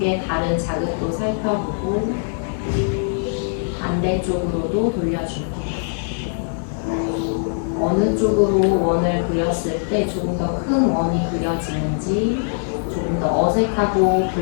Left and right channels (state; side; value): silent; right; digital silence